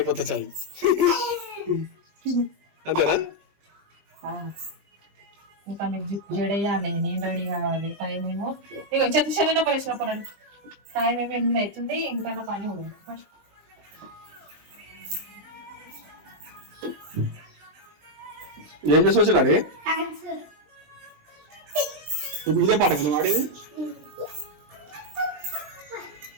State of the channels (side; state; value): left; late; 20 ms